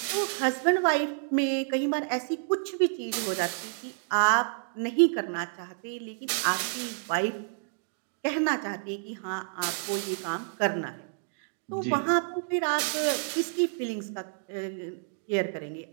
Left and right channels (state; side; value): silent; left; digital silence